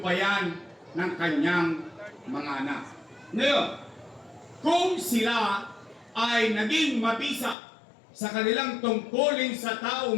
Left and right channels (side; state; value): right; drops out; at 7.6 s